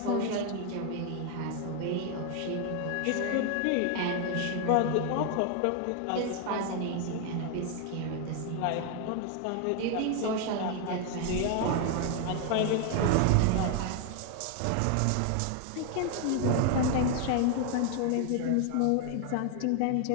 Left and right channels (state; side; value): different; both; correlation 0.01